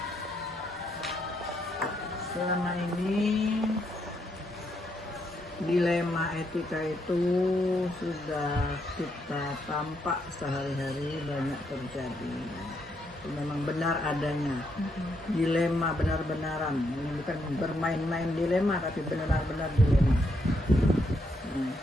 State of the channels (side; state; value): both; normal; correlation 0.77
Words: Selama ini dilema etika itu sudah kita tampak sehari-hari banyak terjadi. Memang benar adanya dilema benar-benaran. Ini bukan bermain-main dilema, tapi benar-benar dilema.